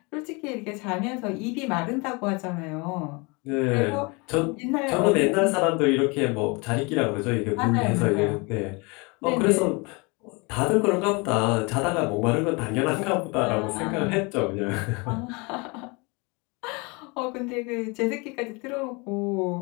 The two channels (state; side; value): quieter; right; 28.7 dB